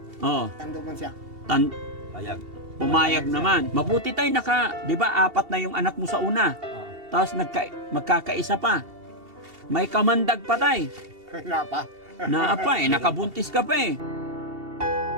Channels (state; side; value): late; left; 2.7 ms